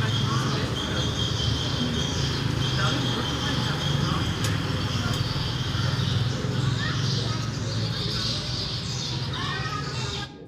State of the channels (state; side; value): identical; both; correlation 1.00